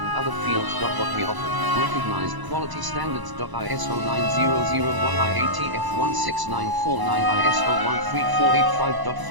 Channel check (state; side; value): late; left; 1.0 ms